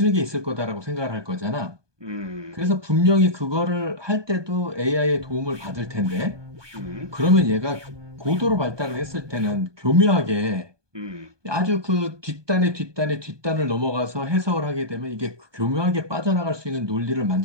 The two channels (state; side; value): late; left; 1.2 ms